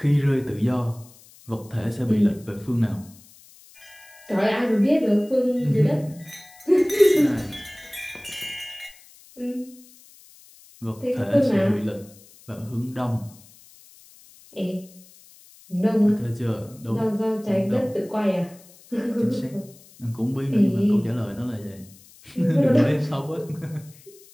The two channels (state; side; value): noise; left; hiss, 24 dB below the sound